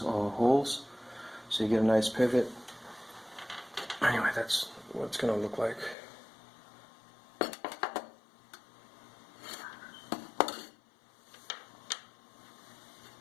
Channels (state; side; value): drops out; right; at 6.0 s